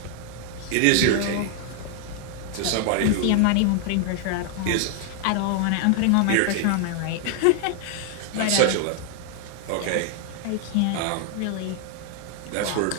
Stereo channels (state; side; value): different; both; correlation 0.00